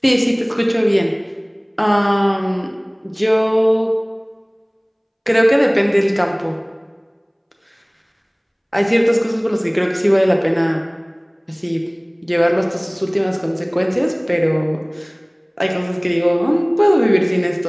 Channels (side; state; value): both; identical; correlation 1.00